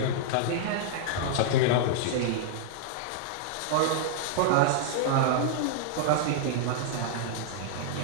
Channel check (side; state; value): both; different; correlation -0.01